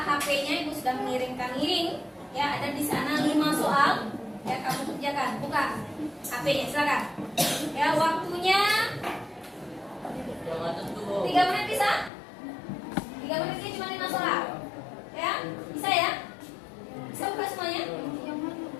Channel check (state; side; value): drops out; right; at 12.1 s